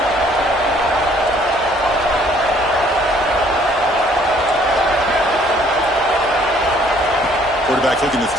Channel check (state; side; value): normal; both; correlation 0.60